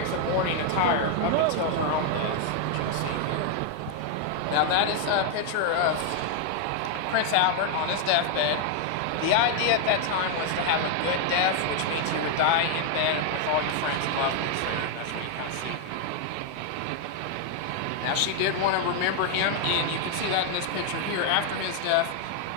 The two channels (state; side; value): different; both; correlation 0.00